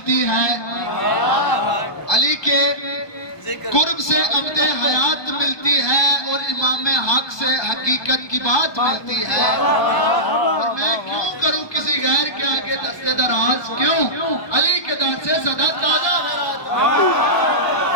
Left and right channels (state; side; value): late; right; 1.2 ms